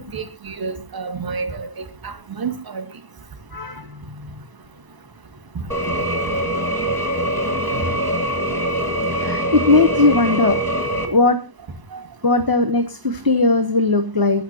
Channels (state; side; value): late; left; 1.0 ms